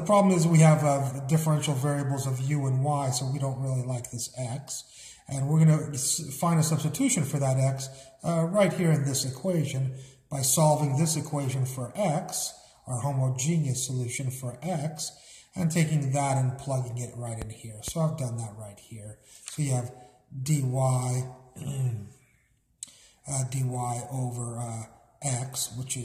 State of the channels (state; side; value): identical; both; correlation 1.00